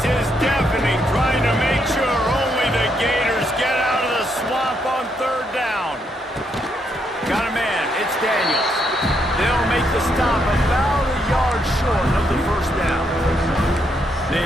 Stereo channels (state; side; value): normal; both; correlation 0.76